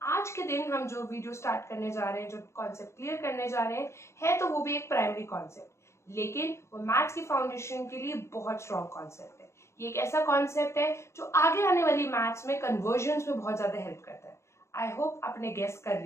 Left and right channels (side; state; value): right; late; 0.13 ms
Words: आज के दिन हम जो वीडियो स्टार्ट करने जा रहे हैं, जो कॉन्सेप्ट क्लियर करने जा रहे हैं, है तो वो भी एक प्राइमरी कॉन्सेप्ट, लेकिन वो मैथ्स की फाउंडेशन के लिए बहुत स्ट्रॉन्ग कॉन्सेप्ट है। ये एक ऐसा कॉन्सेप्ट है जो आगे आने वाली मैथ्स में कन्वर्जन्स में बहुत ज्यादा हेल्प करता है। आई होप आपने गेस कर